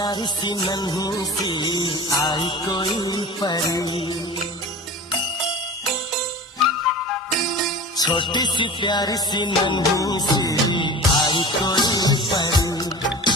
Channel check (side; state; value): both; normal; correlation 0.35